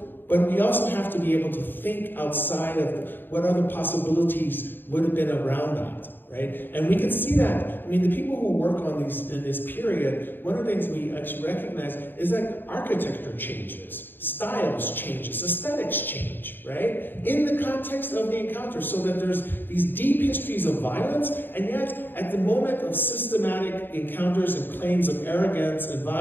but we also have to be able to think outside of what other possibilities would have been around that, right? And we can see that. I mean, the people who work on these in this period, one of the things we actually recognize is that architecture changes, styles changes, aesthetics change, right? In the context of the encounter, so that there's these deep histories of violence, and yet at the moment of systematic encounters and claims of arrogance and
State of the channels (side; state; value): right; late; 0.095 ms